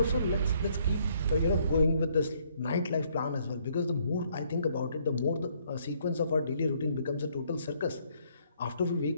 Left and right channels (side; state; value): both; inverted; correlation -0.67